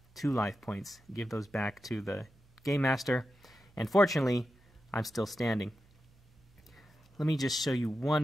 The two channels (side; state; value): right; noise; hum, 30 dB below the sound